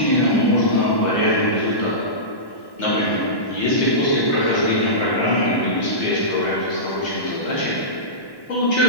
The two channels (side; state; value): right; late; 1.1 ms